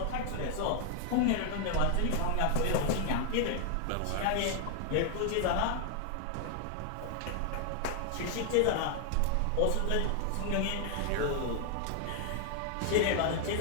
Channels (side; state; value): both; different; correlation 0.00